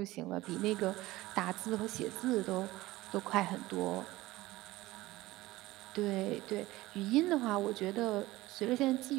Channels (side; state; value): left; quieter; 18.3 dB